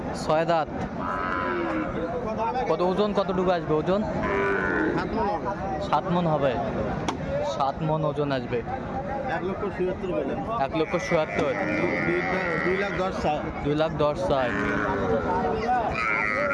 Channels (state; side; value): identical; both; correlation 1.00